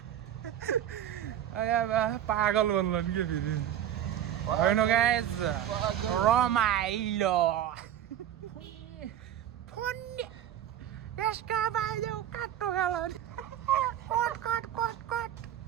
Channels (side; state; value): left; quieter; 10.8 dB